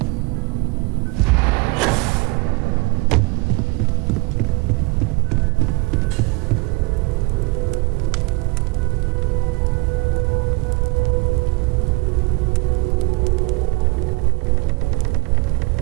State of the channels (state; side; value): quieter; left; 26.0 dB